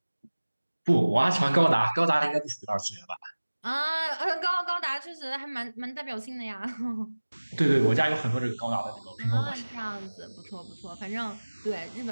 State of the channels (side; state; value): both; inverted; correlation -1.00